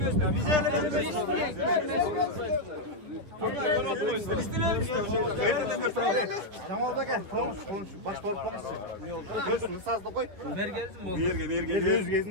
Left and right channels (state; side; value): late; left; 9.7 ms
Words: Bize elmeyin. Jamal da gel. Konuş. Baş torplamışsın. Ne oldu? Gözünü sazda koy. Mergez